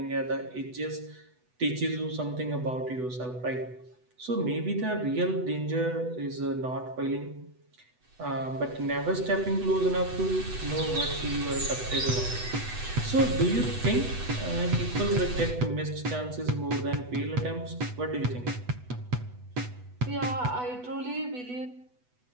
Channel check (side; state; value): left; late; 8.1 ms